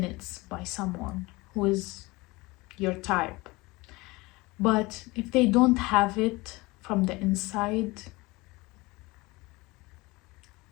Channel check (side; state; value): right; quieter; 22.7 dB